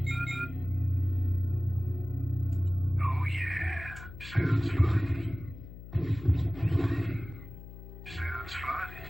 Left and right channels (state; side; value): noise; left; hum, 14 dB below the sound